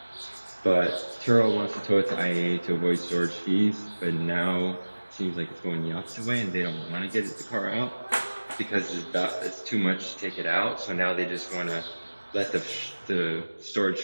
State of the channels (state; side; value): inverted; both; correlation -1.00